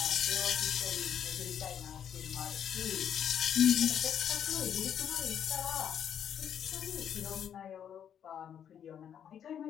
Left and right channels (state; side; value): quieter; right; 9.0 dB